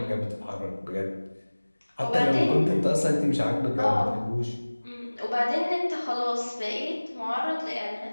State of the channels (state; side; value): inverted; both; correlation -1.00